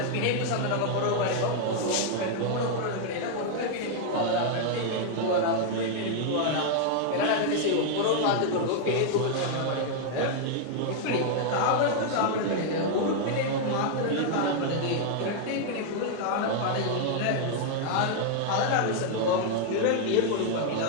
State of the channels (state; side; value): different; both; correlation 0.00